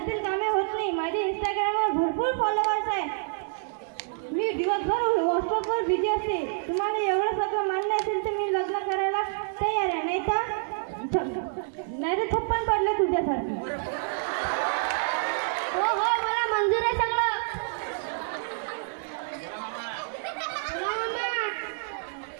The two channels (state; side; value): silent; left; digital silence